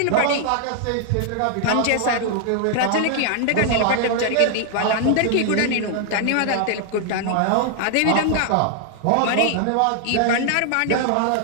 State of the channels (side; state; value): both; different; correlation 0.00